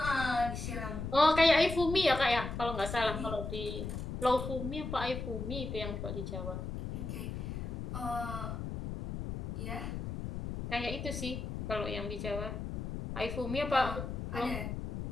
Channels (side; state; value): left; noise; rumble, 5 dB below the sound